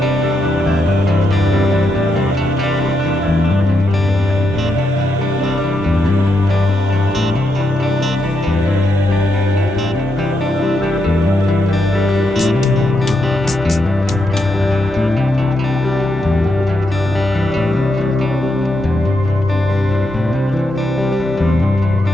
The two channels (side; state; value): both; normal; correlation 0.81